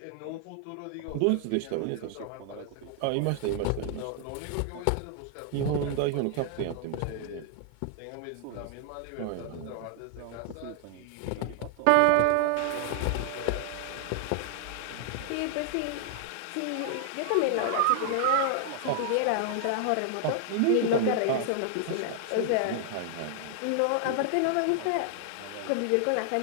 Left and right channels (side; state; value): both; different; correlation 0.00